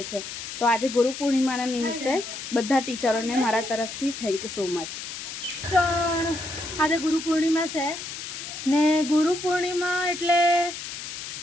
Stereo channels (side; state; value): left; noise; hiss, 8 dB below the sound